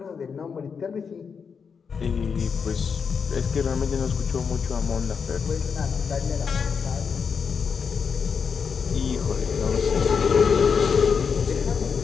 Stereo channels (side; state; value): right; quieter; 6.1 dB